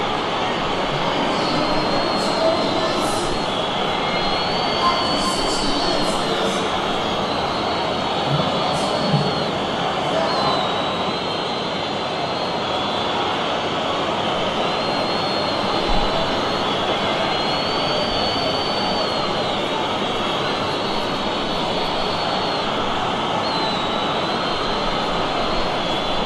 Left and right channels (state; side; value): identical; both; correlation 1.00